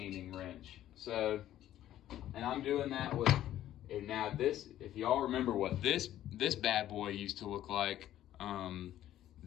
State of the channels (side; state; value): right; quieter; 12.6 dB